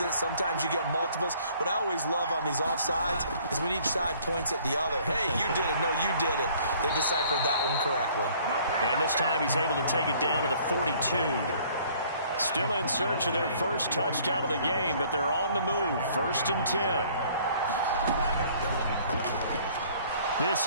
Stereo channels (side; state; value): both; inverted; correlation -0.57